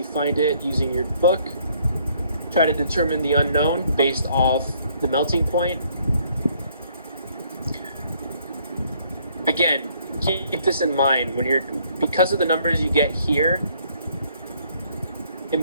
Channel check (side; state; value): both; inverted; correlation -0.65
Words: find it using your book. Try to determine the unknown based off the melting point. Again, keep this in mind because of the numbers you get here. It